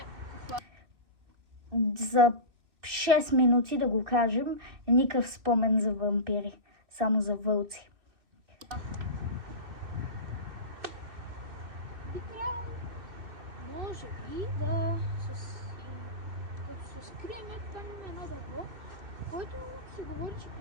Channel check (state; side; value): late; left; 2.6 ms